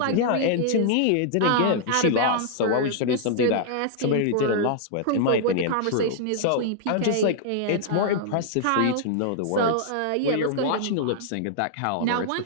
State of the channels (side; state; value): both; different; correlation -0.01